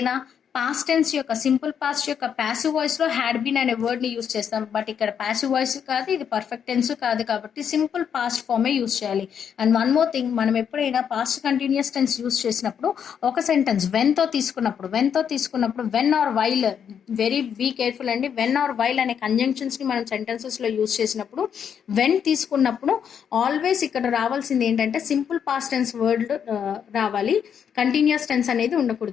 పాస్ట్ టెన్స్ యొక్క సింపుల్ పాస్ట్ యొక్క ప్యాసివ్ వాయిస్ లో హ్యాడ్ బీన్ అనే వర్డ్ ని యూస్ చేస్తాం. బట్ ఇక్కడ ప్యాసివ్ వాయిస్ కాదు, ఇది పర్ఫెక్ట్ టెన్స్ కాదు, కాబట్టి సింపుల్ పాస్ట్ ఫామే యూస్ చేయాలి. అండ్ వన్ మోర్ థింగ్, మనం ఎప్పుడైనా పాస్ట్ కంటిన్యూస్ టెన్స్ యూస్ చేసినప్పుడు ఒక సెంటెన్స్ వెన్ తో తీసుకున్నప్పుడు when or while, very be careful అండి, వెన్ ఆర్ వైల్ అనే కంజంక్షన్స్ ని మనం సెంటెన్సెస్ లో యూస్ చేసినప్పుడు వెన్ తీసుకున్నప్పుడు ఆల్వేస్ ఇక్కడ రావాల్సింది ఏంటంటే సింపుల్ పాస్ట్ టెన్స్ వర్డ్ రావాలి, కంటిన్యూస్ టెన్స్ అనేది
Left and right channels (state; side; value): quieter; right; 7.9 dB